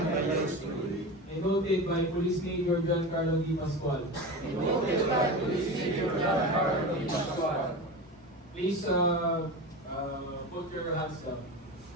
noted by Police Major John Carlo Di Pascual. Please put your hands down.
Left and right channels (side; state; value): both; normal; correlation 0.27